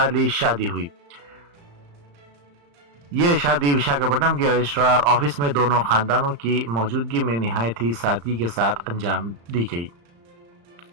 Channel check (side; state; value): left; late; 35 ms